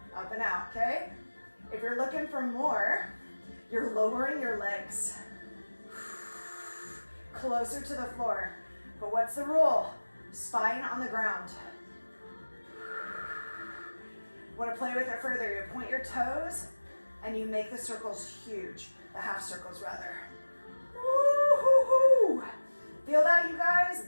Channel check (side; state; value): both; inverted; correlation -1.00